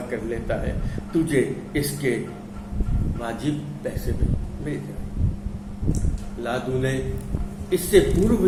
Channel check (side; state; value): both; identical; correlation 1.00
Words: कर लेता है, तुझे इसके वाजिब पैसे भी मिल जाए। लादू ने इससे पूर्व